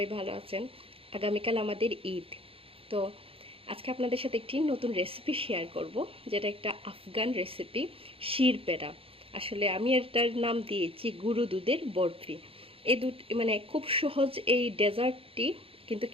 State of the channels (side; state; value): left; late; 0.27 ms